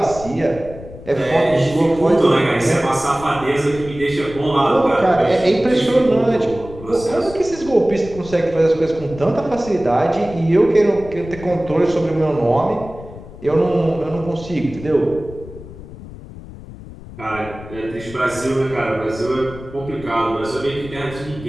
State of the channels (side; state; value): left; noise; rumble, 15 dB below the sound